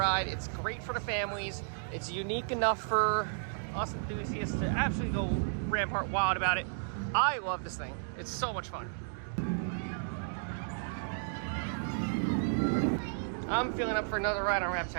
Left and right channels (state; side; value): silent; left; digital silence